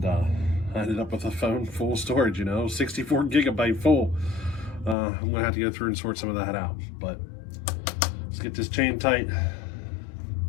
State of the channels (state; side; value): drops out; right; at 5.0 s